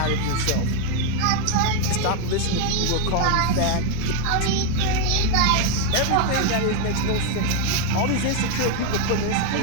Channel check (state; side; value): different; both; correlation 0.01